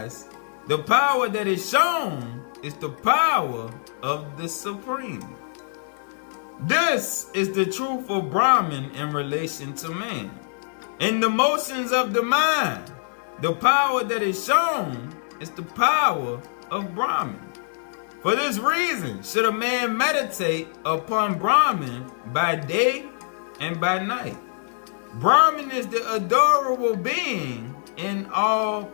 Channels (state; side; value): silent; right; digital silence